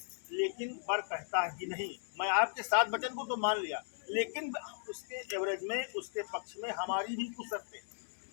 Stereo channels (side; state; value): right; silent; digital silence